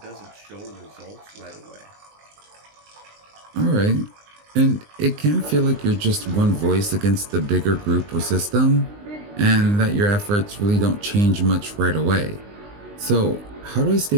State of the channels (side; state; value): left; late; 19 ms